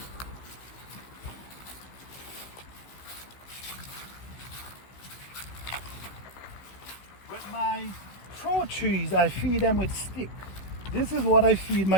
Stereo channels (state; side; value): late; right; 16 ms